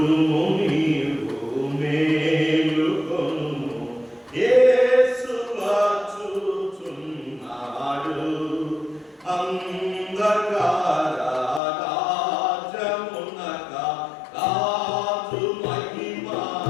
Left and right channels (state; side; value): drops out; right; at 11.6 s